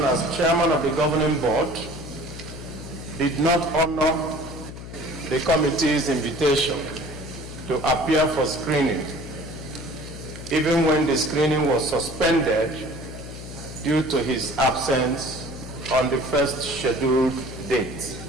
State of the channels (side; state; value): left; noise; hum, 12 dB below the sound